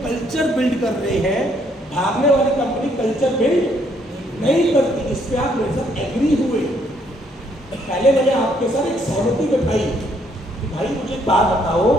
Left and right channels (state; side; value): normal; both; correlation 0.69